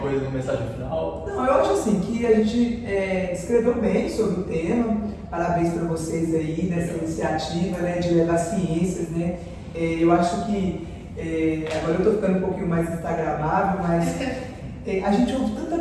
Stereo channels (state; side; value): identical; both; correlation 1.00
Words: uma mensagem final? Não, eu acho assim que a gente escreveu bem sobre o tema. Parabéns para vocês aí nessa iniciativa, né, de levar ciências, né? Eu acho que agora eu estou ficando um pouquinho mais instagramável, mas a gente ouve tanto